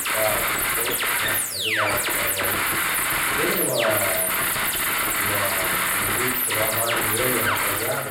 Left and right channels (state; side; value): identical; both; correlation 1.00